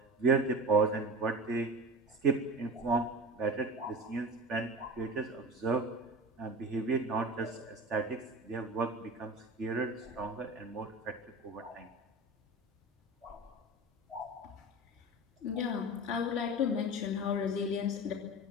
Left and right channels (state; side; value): normal; both; correlation 0.31